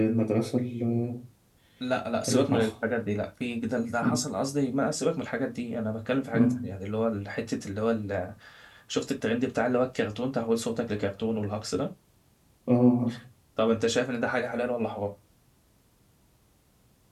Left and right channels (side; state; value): both; identical; correlation 1.00